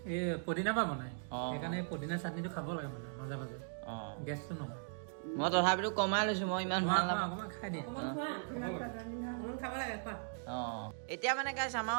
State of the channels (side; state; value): left; silent; digital silence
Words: এই পুদিনাৰ পৰা বনাই অঁ। সেইকাৰণে এই পুদিনা চাটনিটো খাব লাগে মানে মাজে মাজে অঁ গেছটো নহয় মই তথাপিতো কমাই লৈছোঁ মই ইমান ভাল নাপাওঁ অকণমান খাই দিয়া অকণমান খোৱা অকণমান খাব লাগে খোৱা অঁ এতিয়া মানে গাইছ